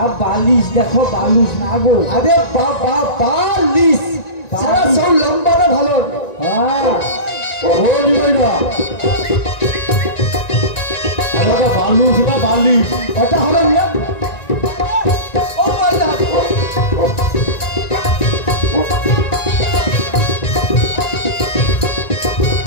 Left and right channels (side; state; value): right; late; 1.9 ms